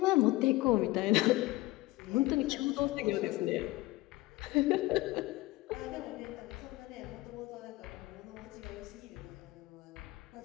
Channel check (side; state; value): right; quieter; 19.5 dB